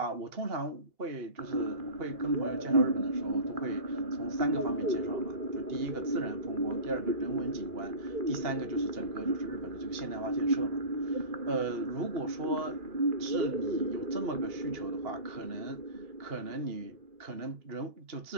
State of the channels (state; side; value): late; left; 2.8 ms